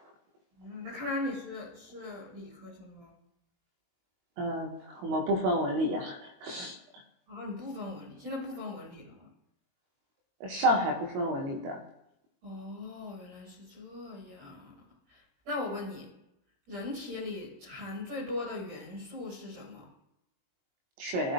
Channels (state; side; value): late; left; 22 ms